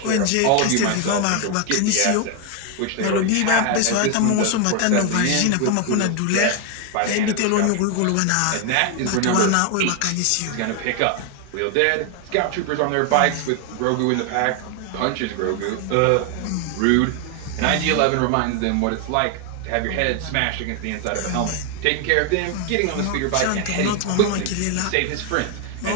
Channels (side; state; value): both; different; correlation 0.01